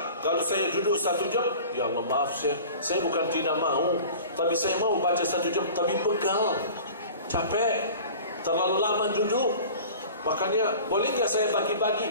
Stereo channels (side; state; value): both; inverted; correlation -0.41